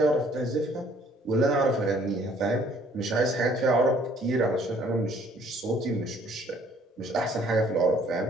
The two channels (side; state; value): both; normal; correlation 0.60